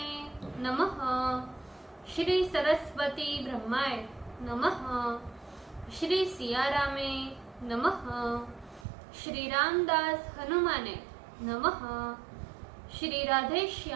नमः। श्री सरस्वती ब्रह्माय नमः। श्री सियारामे नमः। श्री रामदास हनुमाने नमः। श्री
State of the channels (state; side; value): drops out; left; at 8.8 s